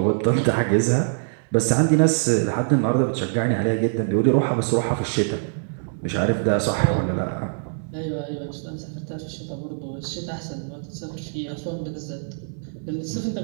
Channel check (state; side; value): silent; left; digital silence